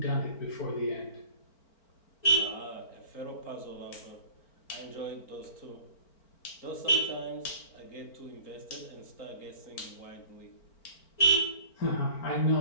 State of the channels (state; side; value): late; right; 4.4 ms